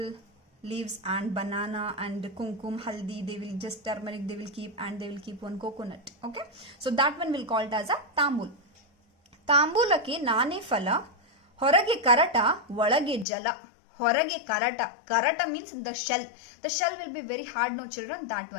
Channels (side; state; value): right; drops out; at 13.2 s